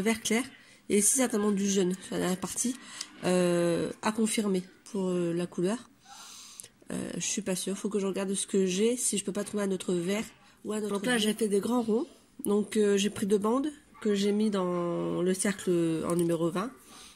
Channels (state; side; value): identical; both; correlation 1.00